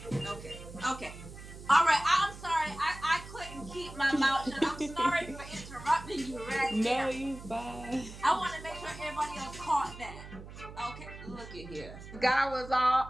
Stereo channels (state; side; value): noise; right; hum, 14 dB below the sound